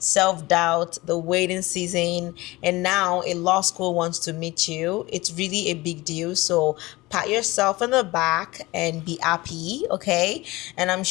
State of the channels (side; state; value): right; quieter; 20.9 dB